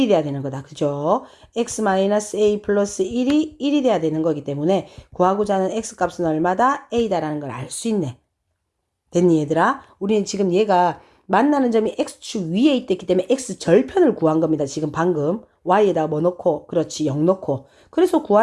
돼야 되는 거다. 그죠? X-A 플러스 1이 돼야 되는 거기 때문에 구하고자 하는 X값은 얼마다? A다라는 걸 알 수 있네. 됐니 얘들아? 우리는 지금 얘가 만나는 점이 X축 위에 있기 때문에 X절편을 구한 겁니다. 지금 방금 Y에다가 뭐 넣고 그렇지 0 넣고 그래서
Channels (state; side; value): identical; both; correlation 1.00